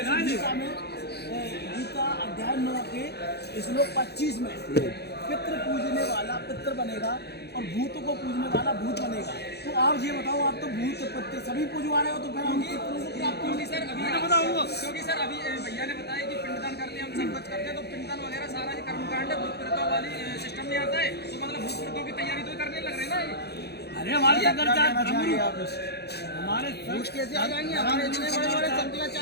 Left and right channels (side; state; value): right; late; 0.48 ms